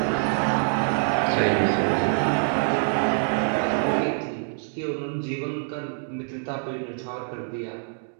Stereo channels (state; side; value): silent; left; 62 dB below the other